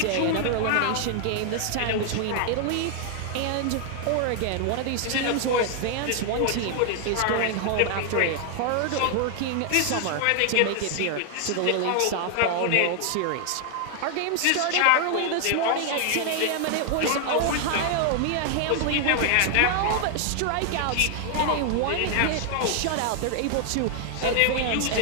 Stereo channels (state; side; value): different; both; correlation 0.00